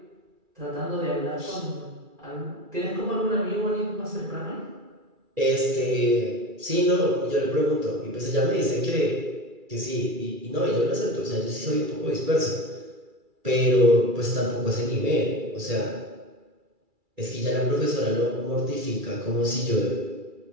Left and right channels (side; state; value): left; late; 2.3 ms